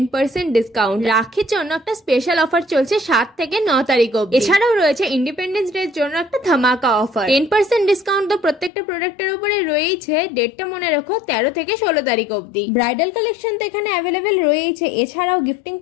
ডিসকাউন্ট। রাখির জন্য একটা স্পেশাল অফার চলছে 7 থেকে 9 তারিখ অবধি। এছাড়াও রয়েছে ইন্ডিপেন্ডেন্স ডে এর জন্য একটা ধামাকা অফার। 10% ডিসকাউন্ট তো প্রত্যেকটা প্রোডাক্টের উপরে রয়েছে। ডেটটা মনে রাখো 13 থেকে 16 তারিখ অবধি। ব্রাইডাল কালেকশন তো এখানে অ্যাভেলেবেল রয়েছে। এছাড়াও গিফটিং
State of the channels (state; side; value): drops out; right; at 8.7 s